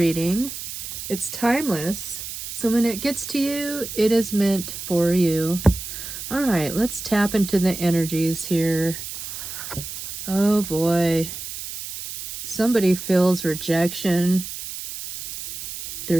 It's timeless, so when it gets to you, it is meant for you. All right, let's tap into the energies here. Oh boy. Somebody feels rejection.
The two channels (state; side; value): noise; right; hiss, 9 dB below the sound